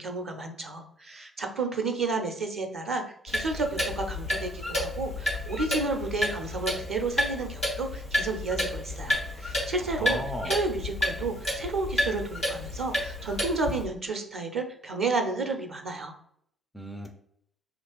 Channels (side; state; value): both; normal; correlation 0.59